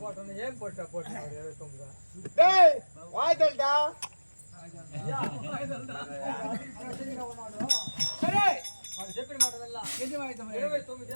போட்டோன்னு ஏன் போட்டா 29 டேய் வாய்தல்டா సరే వాడు చెప్పిన మాట వెళ్ళా ఎన్ని వాయిద్యం 29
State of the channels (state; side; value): inverted; both; correlation -1.00